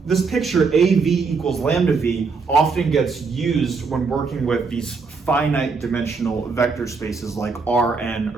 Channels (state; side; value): quieter; left; 4.7 dB